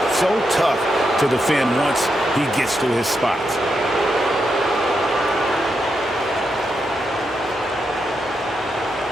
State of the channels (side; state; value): both; normal; correlation 0.84